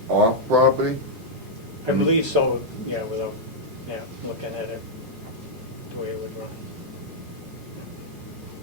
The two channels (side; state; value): both; normal; correlation -0.06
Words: off property? I believe so, yeah, without, looking at it, the way it would run.